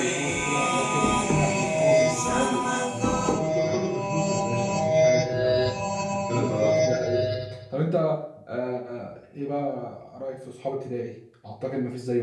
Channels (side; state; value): both; identical; correlation 1.00